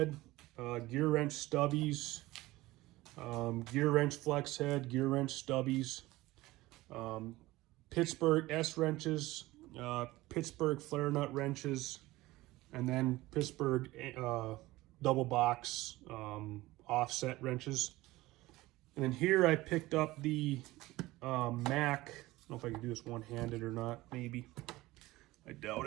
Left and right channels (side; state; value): left; quieter; 18.6 dB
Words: Gearwrench stubbies, Gearwrench flex head, Gearwrench stubbies, Pittsburgh S wrenches, Pittsburgh flare nut wrenches, and then Pittsburgh double box offset wrenches. And then here I picked up the Mac. I don't know if I can do this one-handed or not. Maybe. I